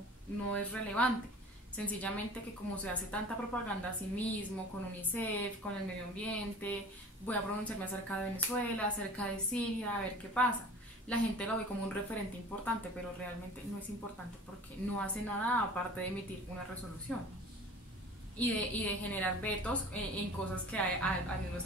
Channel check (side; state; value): both; normal; correlation 0.43